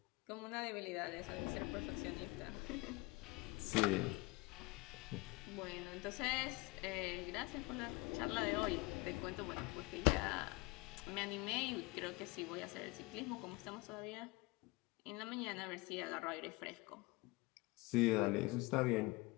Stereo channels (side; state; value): right; quieter; 24.3 dB